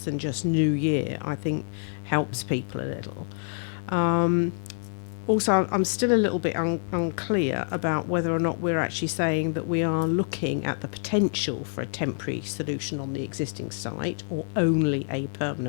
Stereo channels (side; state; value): right; silent; 60 dB below the other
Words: than just New Year, I think helps people a little. Also, I'm still a little bit unclear about whether or not we're actually saying that we are looking at the potential for a temporary solution on the existing site or only a